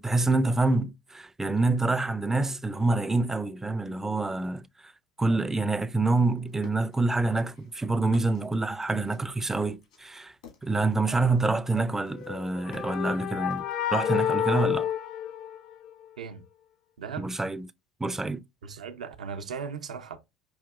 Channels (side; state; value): both; normal; correlation 0.79